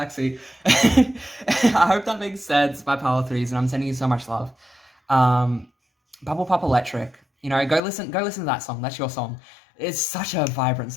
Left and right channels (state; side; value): drops out; right; at 7.8 s